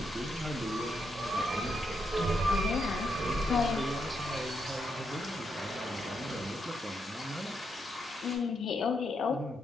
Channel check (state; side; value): normal; both; correlation 0.80